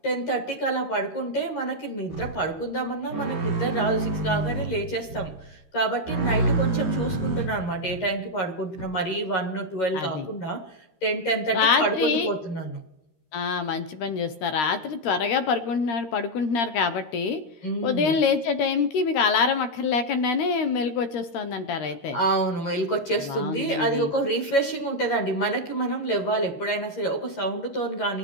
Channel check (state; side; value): late; right; 13 ms